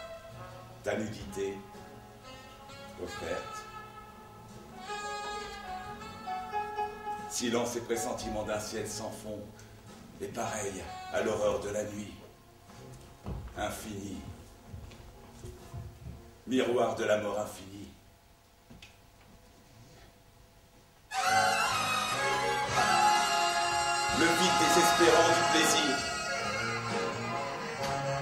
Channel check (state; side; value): identical; both; correlation 1.00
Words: Ta nudité offerte. Silence et pressentiment d'un ciel sans fond, et pareil à l'horreur de la nuit. Infini. Miroir de la mort infinie. Le vide désespérant du plaisir.